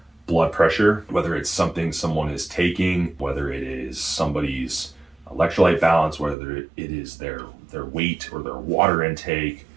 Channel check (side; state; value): left; drops out; at 6.4 s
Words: blood pressure, whether it's something someone is taking, whether it is somebody's electrolyte balance, whether it is their weight or their water intake,